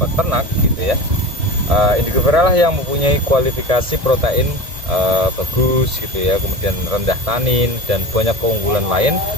peternak gitu ya. Indigo vera lah yang mempunyai kualifikasi protein bagus gitu ya, kemudian rendah tanin dan banyak keunggulan lain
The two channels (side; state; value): left; late; 1.7 ms